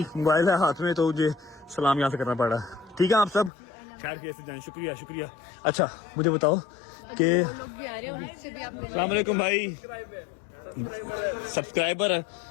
موبائل ہے ہاتھ میں, تو مجھے سلام یہاں سے کرنا پڑا. ٹھیک ہے آپ سب خیر کیسے جائیں, شکریہ. اچھا مجھے بتاؤ کہ السلام علیکم بھائی, سبسکرائبر ہے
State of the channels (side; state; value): right; drops out; at 3.5 s